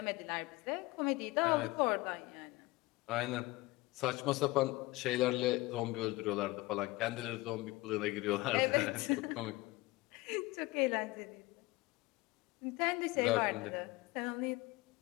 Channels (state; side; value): quieter; right; 21.1 dB